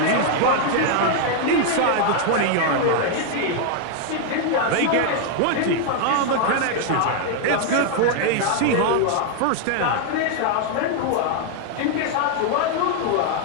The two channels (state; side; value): different; both; correlation 0.00